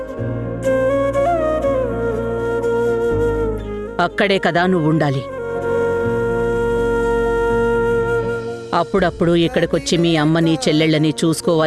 అక్కడే కదా నువ్వుండాలి. అప్పుడప్పుడు ఇక్కడికొచ్చి మీ అమ్మని చెల్లెళ్ళని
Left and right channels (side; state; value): both; identical; correlation 1.00